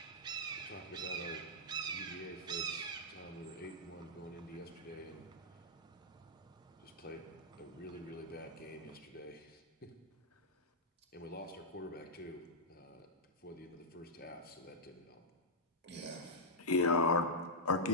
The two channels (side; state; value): both; normal; correlation -0.08